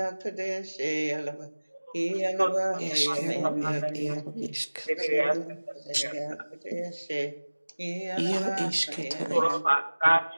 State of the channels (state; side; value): inverted; both; correlation -1.00